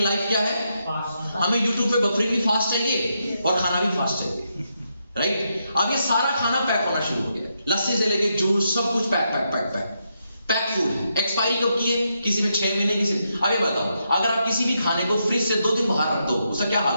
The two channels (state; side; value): inverted; both; correlation -0.81